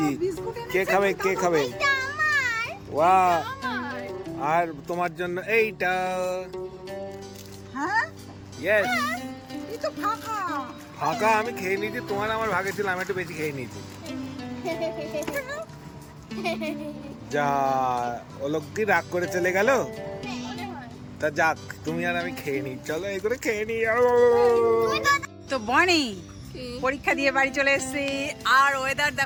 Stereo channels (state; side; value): identical; both; correlation 1.00